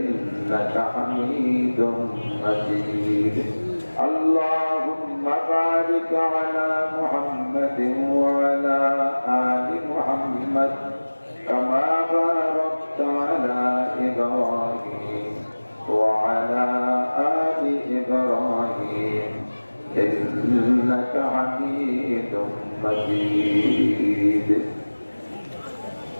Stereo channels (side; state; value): both; inverted; correlation -1.00